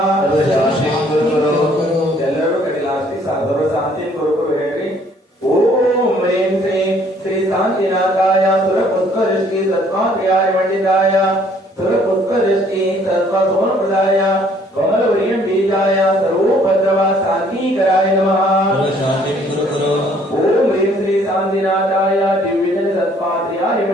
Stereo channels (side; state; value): both; normal; correlation 0.61